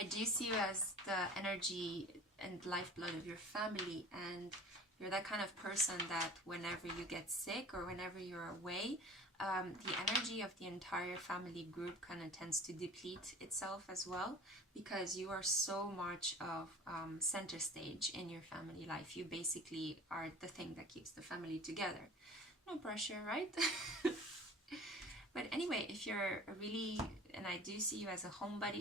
I do see you as the energy and lifeblood of your family, and you're that kind of person that whenever you get sick or whenever you're away, the energy of the entire family group kind of tends to deplete itself as well, because you are so much of center stage in your family life. You basically are the thing that keeps the family together. No pressure, right? But anyway, if you're and I do see you as a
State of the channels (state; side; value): normal; both; correlation 0.43